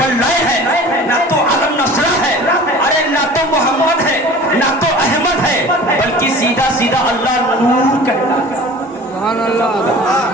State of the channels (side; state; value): both; normal; correlation 0.42